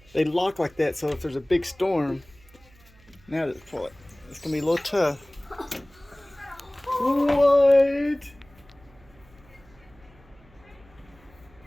They lock like that, so if there's a big storm, now just pull it. It's gonna be a little tough. What?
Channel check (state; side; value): noise; right; hum, 27 dB below the sound